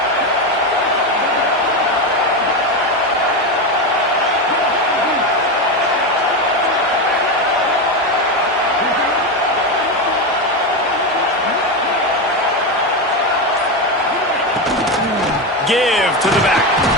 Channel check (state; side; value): normal; both; correlation 0.14